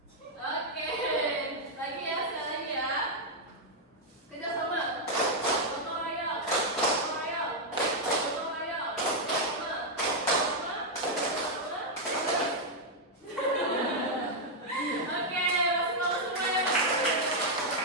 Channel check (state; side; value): normal; both; correlation -0.02